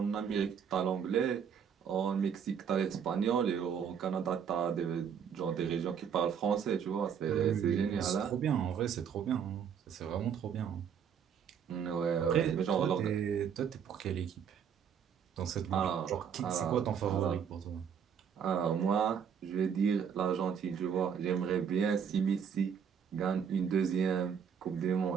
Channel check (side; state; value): left; quieter; 7.6 dB